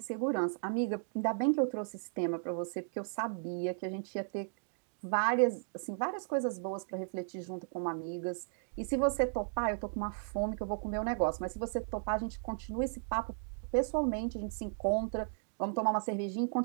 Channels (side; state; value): left; silent; digital silence